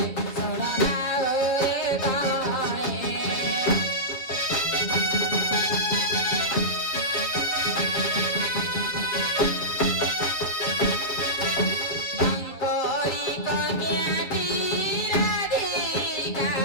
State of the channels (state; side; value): late; right; 7.6 ms